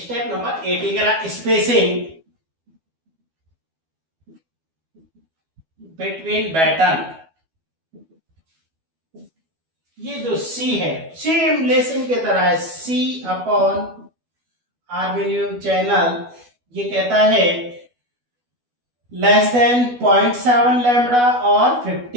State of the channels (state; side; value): late; left; 12 ms